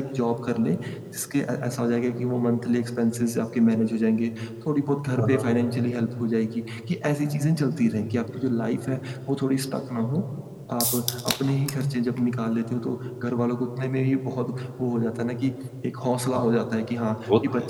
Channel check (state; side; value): identical; both; correlation 1.00